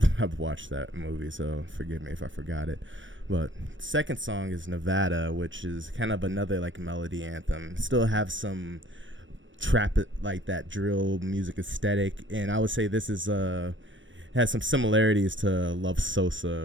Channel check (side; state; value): left; late; 0.56 ms